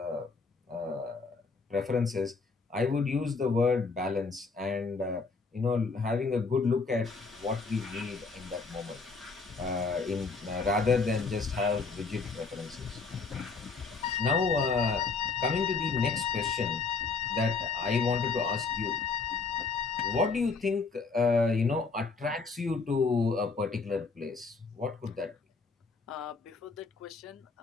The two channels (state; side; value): quieter; right; 4.4 dB